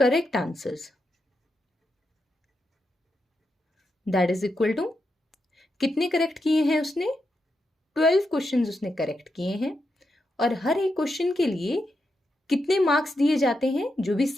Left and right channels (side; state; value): both; normal; correlation 0.85